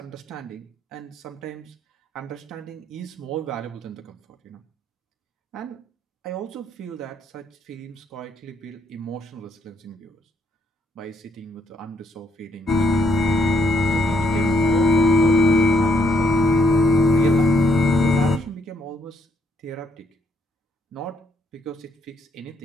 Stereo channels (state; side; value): normal; both; correlation 0.72